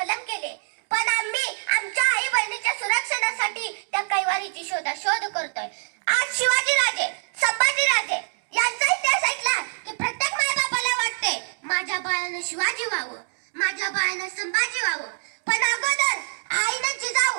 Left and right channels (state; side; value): silent; left; digital silence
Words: केले, पण आम्ही आमच्या आई बहिणीच्या सुरक्षणासाठी त्या कैवारीची शोध करतोय. आज शिवाजी राजे, संभाजी राजे यांचा इतिहास ऐकला की प्रत्येक मायबापाला वाटते माझ्या बाळानं शिवाजी व्हावं, माझ्या बाळानं संभाजी व्हावं, पण अगोदर आईनं